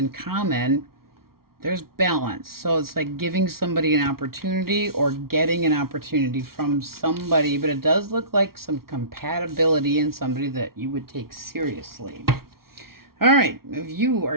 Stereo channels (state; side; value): late; left; 0.94 ms